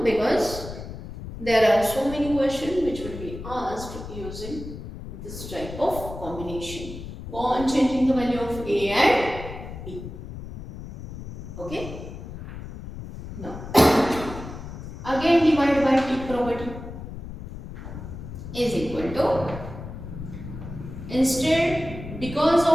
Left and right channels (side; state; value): left; noise; rumble, 10 dB below the sound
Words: Because there are so many questions which will be asked using this type of combination. Go on changing the value of a and b. Okay. Now again divided by t property is equal to, instead, because